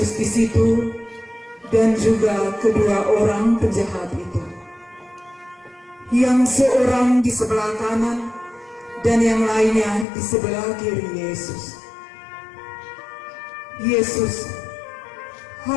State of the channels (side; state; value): right; drops out; at 10.1 s